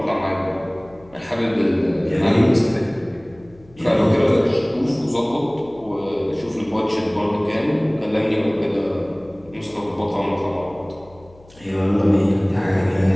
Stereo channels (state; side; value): noise; left; hum, 25 dB below the sound